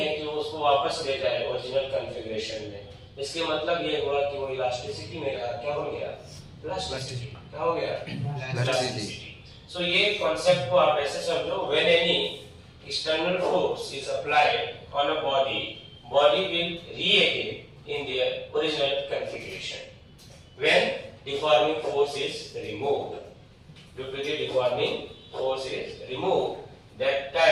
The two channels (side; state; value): both; identical; correlation 1.00